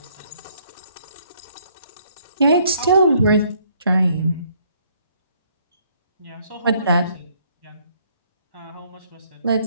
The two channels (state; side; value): inverted; both; correlation -0.65